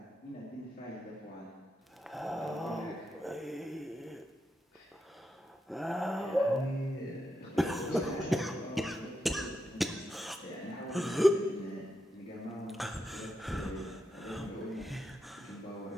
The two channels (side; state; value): both; normal; correlation 0.85